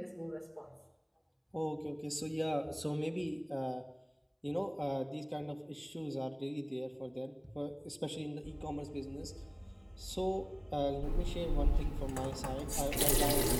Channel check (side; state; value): both; identical; correlation 1.00